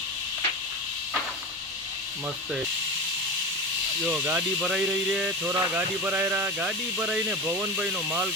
मस्त है। जो गाड़ी भराई रही है, छोरा गाड़ी भराई रहा। गाड़ी भराई ने भवन भाई नो माल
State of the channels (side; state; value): both; normal; correlation 0.24